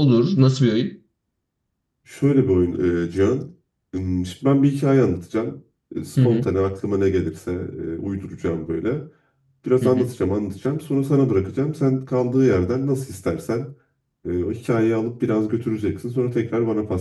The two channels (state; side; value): identical; both; correlation 1.00